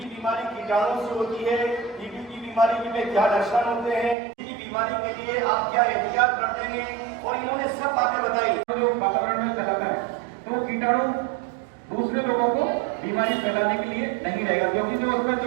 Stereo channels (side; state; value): left; drops out; at 4.2 s